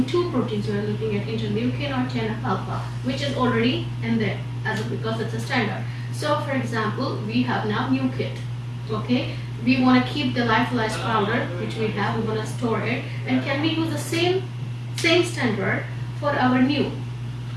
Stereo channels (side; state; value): both; identical; correlation 1.00